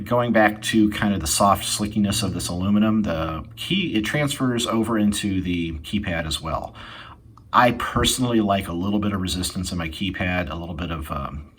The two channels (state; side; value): identical; both; correlation 1.00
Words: going back to kind of the soft slickiness of this aluminum, it transfers over into the keypad as well. I personally like a little bit of resistance in my keypad, a little bit of, I